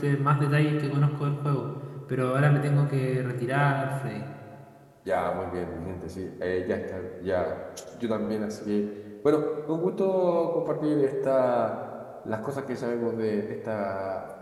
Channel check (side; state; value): both; identical; correlation 1.00